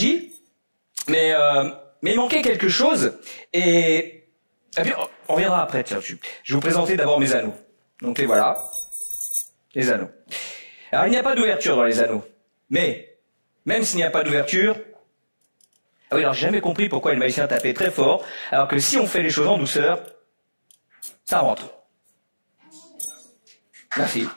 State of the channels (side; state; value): both; inverted; correlation -1.00